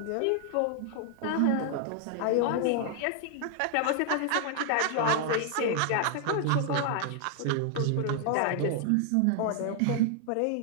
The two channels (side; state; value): both; different; correlation 0.00